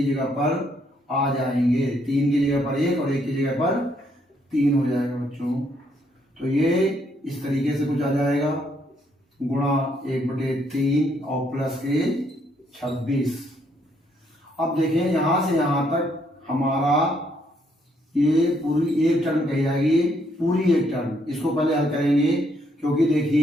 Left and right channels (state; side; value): normal; both; correlation 0.71